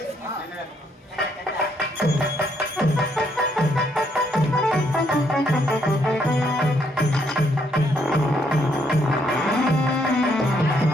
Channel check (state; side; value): normal; both; correlation 0.72